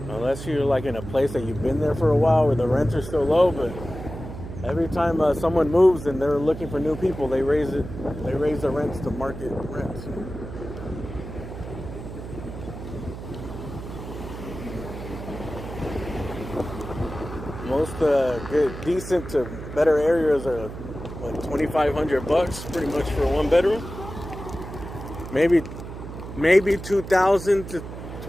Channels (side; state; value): right; noise; hum, 10 dB below the sound